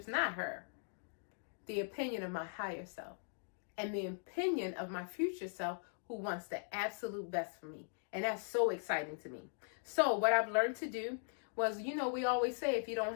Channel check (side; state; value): right; silent; digital silence